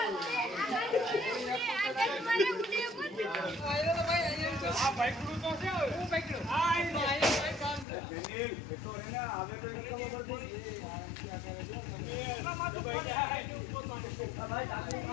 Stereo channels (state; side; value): drops out; right; at 7.9 s